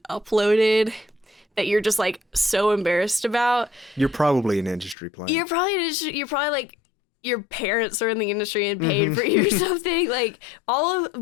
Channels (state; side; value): drops out; right; at 5.0 s